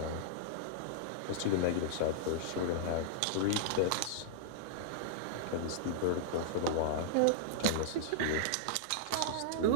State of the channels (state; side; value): different; both; correlation -0.02